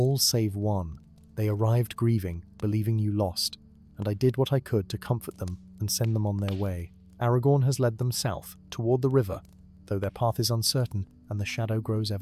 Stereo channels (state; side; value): identical; both; correlation 1.00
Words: save one. They arrived grieving, believing you lost, and I did what I could to comfort them and send them on their way. Aragorn has led them south, toward the river, though their path is uncertain and the shadow grows